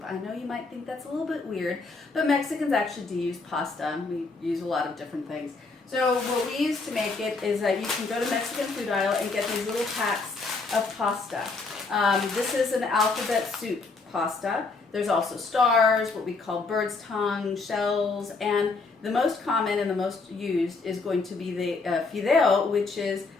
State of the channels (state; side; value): quieter; right; 3.9 dB